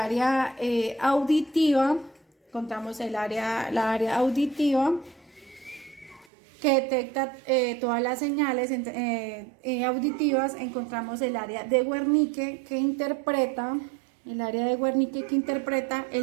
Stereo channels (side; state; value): left; drops out; at 6.2 s